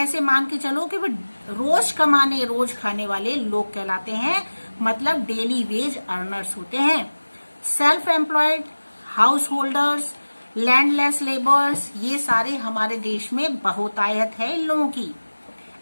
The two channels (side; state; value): both; inverted; correlation -1.00